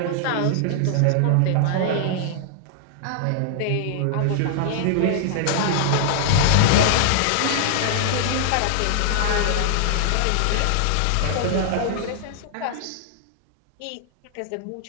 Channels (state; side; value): different; both; correlation -0.01